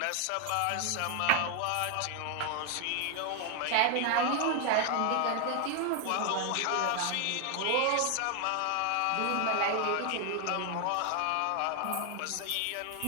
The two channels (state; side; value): different; both; correlation 0.01